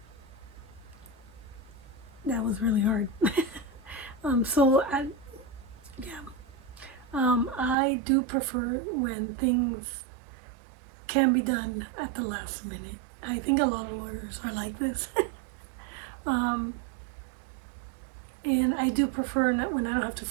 that was really hard. I do prefer when things can be done at the last minute. I think a lot of lawyers are like this. And I do prefer when I don't have to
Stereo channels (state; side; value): drops out; left; at 7.8 s